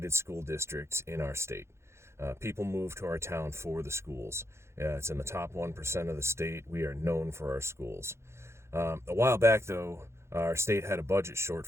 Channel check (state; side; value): late; left; 0.13 ms